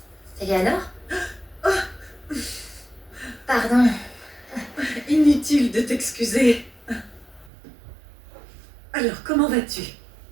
Eleanor? Pardon. Inutile de t'excuser. Alors, comment vas-tu?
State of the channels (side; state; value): left; drops out; at 7.5 s